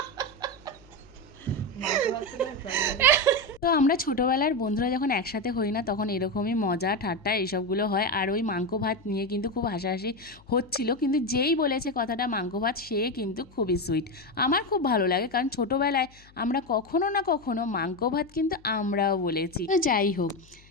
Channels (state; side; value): noise; left; hum, 26 dB below the sound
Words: তো আমরা ছোটোবেলার বন্ধুরা যখন একসাথে হই না, তখন এরকমই মজা ঠাট্টা এইসবগুলো হয়। আর ওই মাংস ভাত নিয়ে কিন্তু খুব হাসাহাসি হচ্ছিল, কিন্তু যেই বলেছে কথাটা মাংস ভাত, সে কিন্তু খুবই সুইট। আমার খুব ভালো লাগে, কারণ ছোটোবেলায় আমরা কখনো না কখনো মাংস ভাত কিন্তু আমরাও বলেছি। তো যাই হোক,